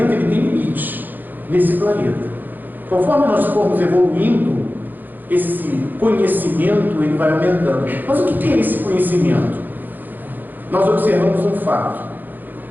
ele tem limites nesse planeta. Conforme nós formos evoluindo, esse conhecimento ele vai aumentando. Mas o que é esse conhecimento? Nós observamos um fato,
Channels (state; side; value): late; left; 0.087 ms